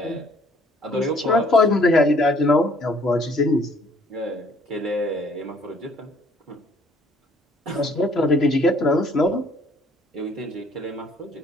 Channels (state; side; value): normal; both; correlation 0.61